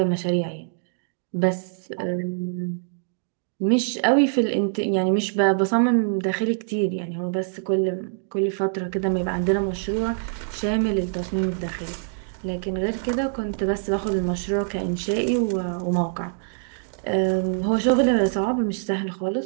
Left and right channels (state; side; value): silent; left; digital silence